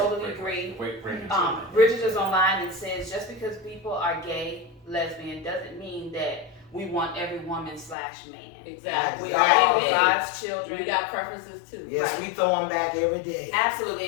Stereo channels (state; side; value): drops out; right; at 8.0 s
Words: agree. Bridget is online and says just because people are gay, lesbian, doesn't mean that we want every woman/man. Exactly. We are Amen. God's children. We got preferences too. Yes, Right. we throw them back every day. Absolutely.